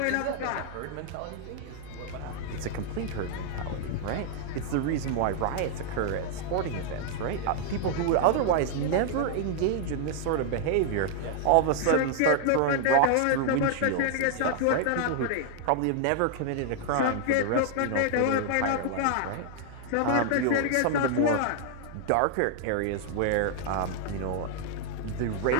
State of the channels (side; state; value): both; different; correlation 0.00